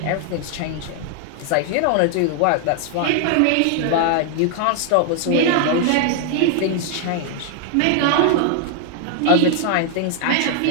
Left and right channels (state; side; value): different; both; correlation 0.00